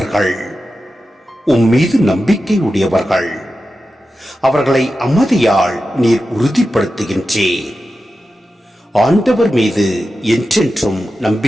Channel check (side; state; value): both; normal; correlation 0.92